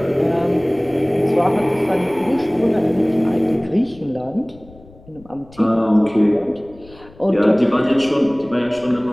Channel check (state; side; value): noise; left; rumble, 24 dB below the sound